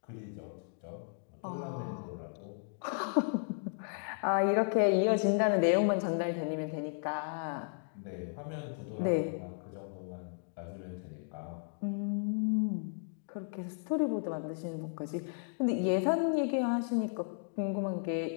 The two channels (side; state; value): right; silent; digital silence